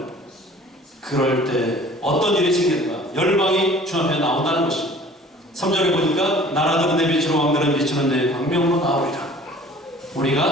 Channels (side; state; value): both; normal; correlation 0.49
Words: 것. 그럴 때 어떤 일이 생기는가? 열방이 주 앞에 나온다는 것입니다. 3절에 보니까 나라들은 내 빛으로 왕들은 비추는 내 광명으로 나오리라.